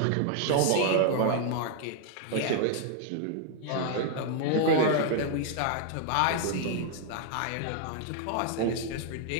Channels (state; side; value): different; both; correlation 0.00